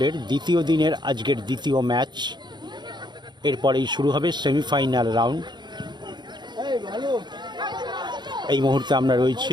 দ্বিতীয় দিনের আজকের দ্বিতীয় ম্যাচ। এরপরেই শুরু হবে সেমিফাইনাল রাউন্ড। এই মুহূর্তে আমরা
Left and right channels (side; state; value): left; late; 0.21 ms